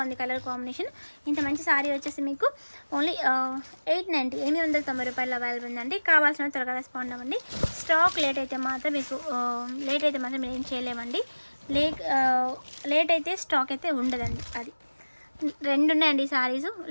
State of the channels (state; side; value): inverted; both; correlation -1.00